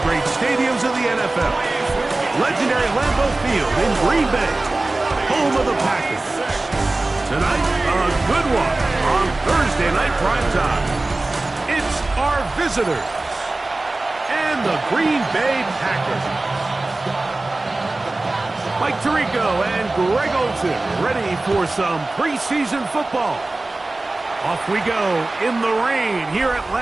great stadiums of the NFL. Legendary Lambeau Field in Green Bay, home of the Packers. Tonight, a good one on Thursday Night Primetime. It's our visitors and the Green Bay Packers. Mike Tirico and Greg Olsen ready for some preseason football. Off we go in the rain here at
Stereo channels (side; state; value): left; quieter; 3.0 dB